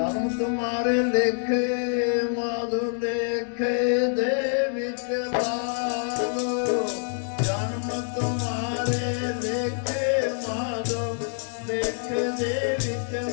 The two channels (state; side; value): silent; right; 61 dB below the other